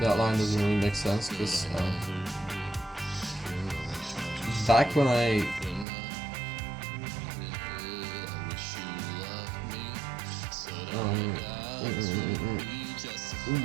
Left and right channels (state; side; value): drops out; left; at 5.9 s